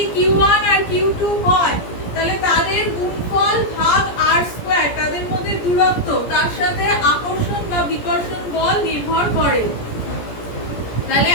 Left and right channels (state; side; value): late; right; 17 ms